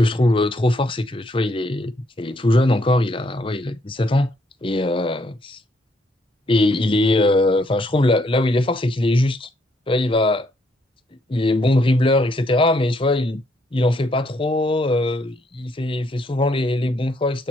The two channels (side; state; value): both; normal; correlation 0.72